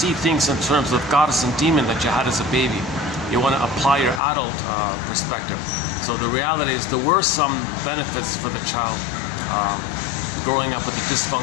things in terms of goddess and demon that you had as a baby. You want to apply your adult perspective. So the reality is there were some benefits for the child growing up with a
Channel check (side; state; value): right; drops out; at 4.2 s